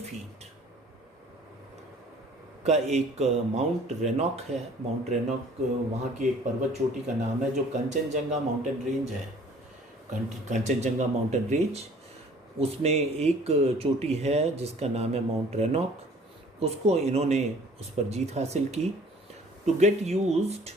का एक माउंट रेनॉक है, माउंट रेनॉक वहाँ की एक पर्वत चोटी का नाम है जो कंचनजंगा माउंटेन रेंज है। कंचनजंगा माउंटेन रेंज, उसमें एक चोटी है जिसका नाम है माउंट रेनॉक। उसको इन्होंने उस पर जीत हासिल की। To get used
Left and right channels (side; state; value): both; normal; correlation 0.52